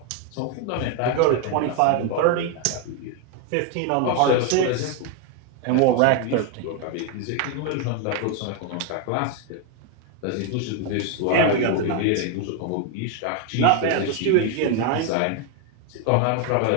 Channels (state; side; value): different; both; correlation 0.01